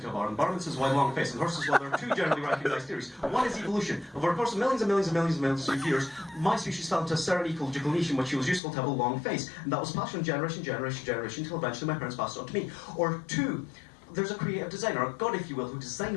a bar, and the barman says, "Why long face?" And the horse says, "Well, there are 2 generally recognised theories. One is evolution. Over the course of millions and millions and millions and millions of years, my species fell into a certain ecological niche in which it was useful to have a long face. And that was passed from generation, until eventually my parents passed it on to me. Or 2, there's a creative designer, a god if you will, who designed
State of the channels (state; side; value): drops out; right; at 8.6 s